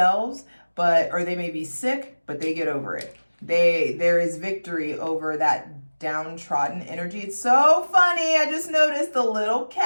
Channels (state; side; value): inverted; both; correlation -1.00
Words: or they may be sick, but they get over it. There is victory over that downtrodden energy. It's so funny. I just noticed the